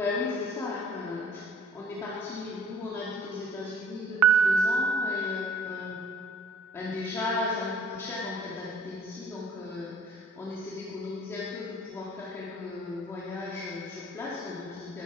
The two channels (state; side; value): normal; both; correlation 0.54